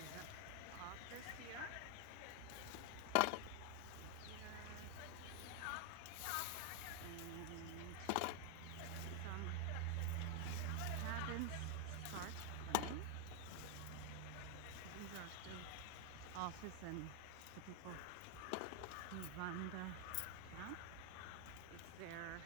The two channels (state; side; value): different; both; correlation 0.00